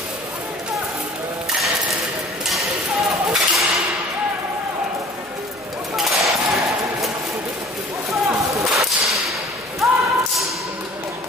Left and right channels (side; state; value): left; noise; hum, 28 dB below the sound